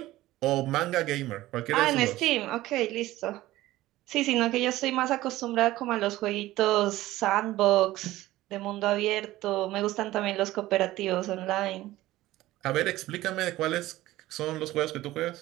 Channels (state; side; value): quieter; left; 16.5 dB